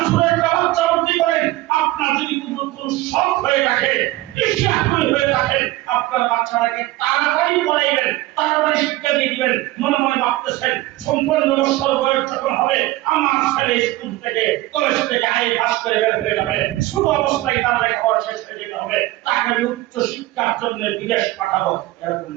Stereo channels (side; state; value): left; quieter; 17.7 dB